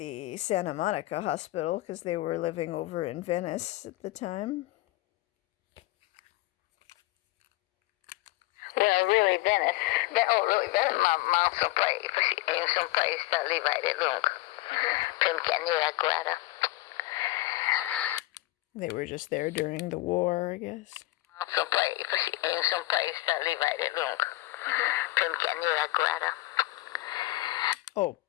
Santa Monica Hospital because they were living over in Venice at the time. Well, really Venice. Really Venice. Mom some place that live right lungo. Pimcanira Guada. They were just there during the war, I guess. Some place that live right lungo. Pimcanira Guada. Oh,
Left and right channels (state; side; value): quieter; right; 18.7 dB